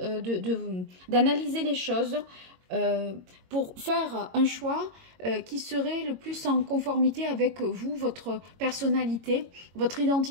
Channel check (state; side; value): late; left; 22 ms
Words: d'analyser les choses pour faire un choix qui serait le plus en conformité avec vous, votre personnalité, votre